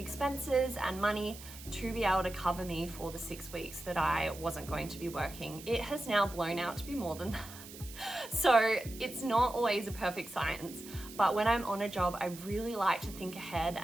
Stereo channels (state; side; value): noise; right; hiss, 15 dB below the sound